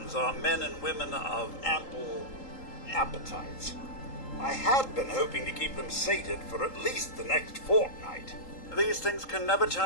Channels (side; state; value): right; late; 3.8 ms